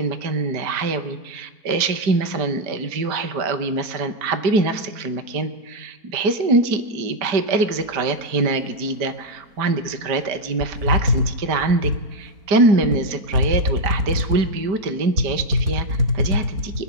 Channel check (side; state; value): left; late; 4.3 ms